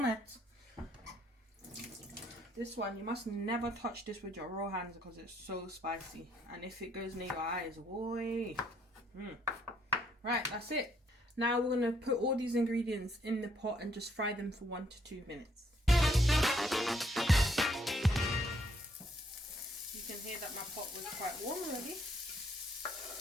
This one, you must never touch this with your raw hands because it's so spicy. And if it goes near your eyes, boy. Right, that's it. Now we're going to put all these ingredients in the pot and just fry them for 1 to 2 minutes. You can hear that my pot was quite warm already.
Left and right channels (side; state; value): both; normal; correlation 0.69